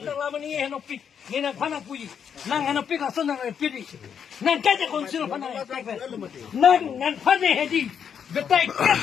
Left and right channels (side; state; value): right; quieter; 7.7 dB